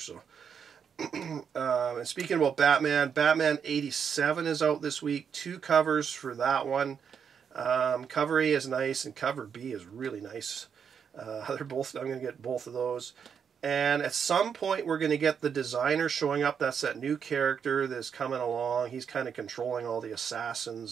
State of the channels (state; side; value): quieter; left; 7.2 dB